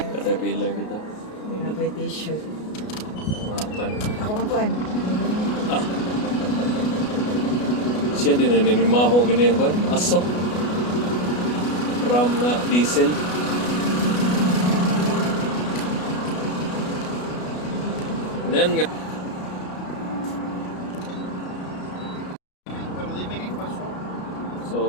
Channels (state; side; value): late; right; 33 ms